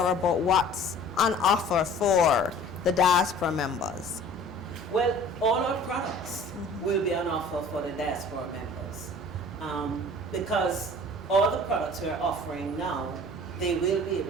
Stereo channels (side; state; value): both; normal; correlation 0.47